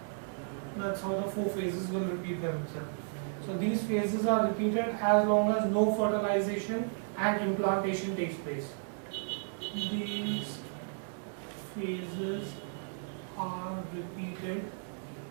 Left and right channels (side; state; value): left; silent; digital silence